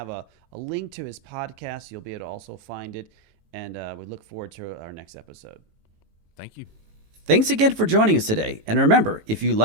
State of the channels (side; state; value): left; late; 18 ms